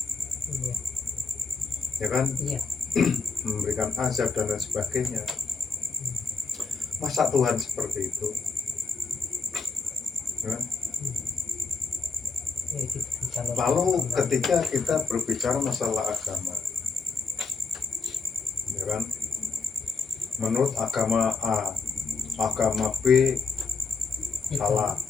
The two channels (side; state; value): right; quieter; 4.3 dB